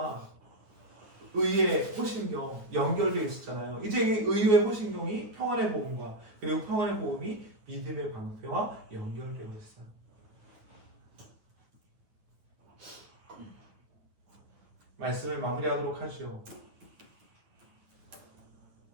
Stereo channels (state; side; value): late; left; 9.3 ms